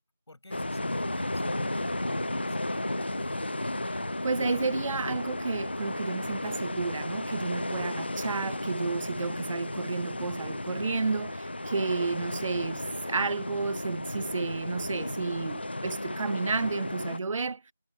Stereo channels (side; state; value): both; inverted; correlation -0.83